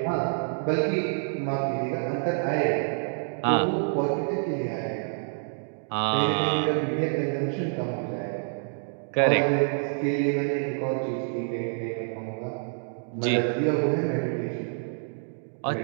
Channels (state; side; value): silent; left; digital silence